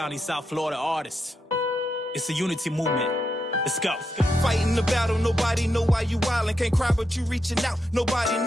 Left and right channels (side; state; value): both; normal; correlation 0.84